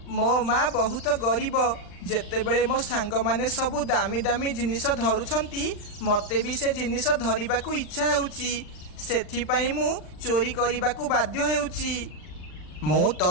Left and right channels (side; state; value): right; late; 39 ms